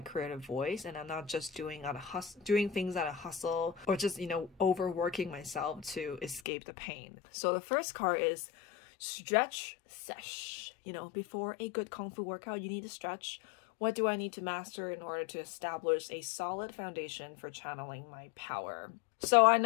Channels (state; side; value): drops out; right; at 6.4 s